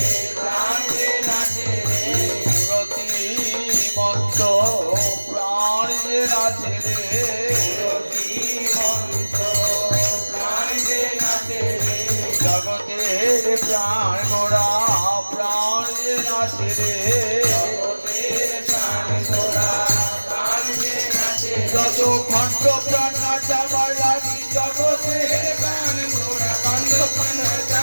প্রাণ যে নাচে রে, মূরতি মন্ত প্রাণ যে নাচে রে, মূরতি মন্ত প্রাণ যে নাচে রে, জগতের প্রাণ গোড়া প্রাণ যে নাচে রে, জগতের প্রাণ গোড়া প্রাণ যে নাচে, যত খণ্ড প্রাণ নাচাবার লাগি জগতের প্রাণ গোড়া, খণ্ড প্রাণ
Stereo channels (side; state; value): both; inverted; correlation -1.00